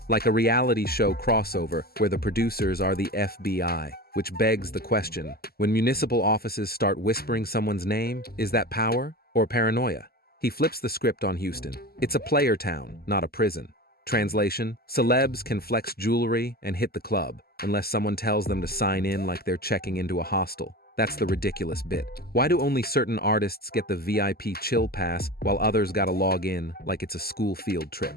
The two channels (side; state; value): right; late; 0.45 ms